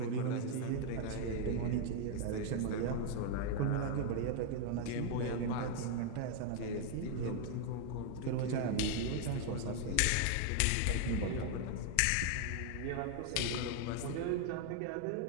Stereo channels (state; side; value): different; both; correlation 0.00